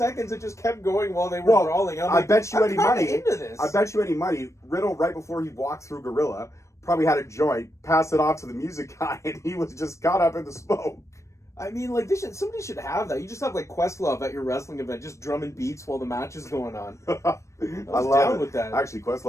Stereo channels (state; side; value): late; right; 0.15 ms